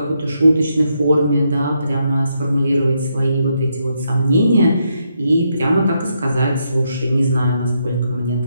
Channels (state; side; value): inverted; both; correlation -0.79